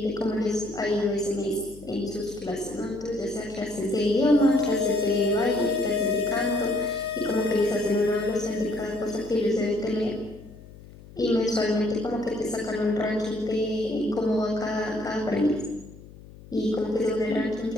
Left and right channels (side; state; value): left; noise; hum, 19 dB below the sound